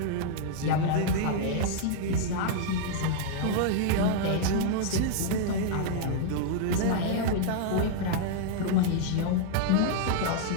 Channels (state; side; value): different; both; correlation -0.01